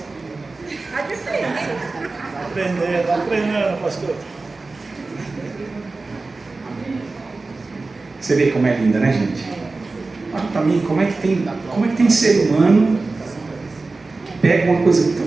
A diferença. Está aprendendo, pastor. Você vê como é linda, né, gente? Olha para mim, como é que tem ser humano que pega uma coisa tão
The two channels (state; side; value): quieter; left; 3.6 dB